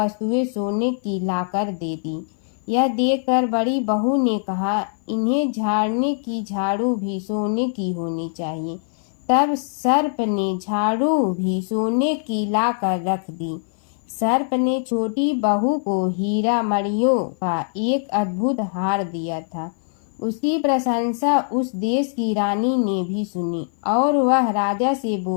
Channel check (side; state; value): right; silent; 56 dB below the other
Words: सोने की लाकर दे दी। यह देखकर बड़ी बहू ने कहा, इन्हें झाड़ने की झाड़ू भी सोने की होनी चाहिए। तब सर्प ने झाड़ू भी सोने की लाकर रख दी। सर्प ने छोटी बहू को हीरा मणियों का एक अद्भुत हार दिया था। उसकी प्रशंसा उस देश की रानी ने भी सुनी और वह राजा से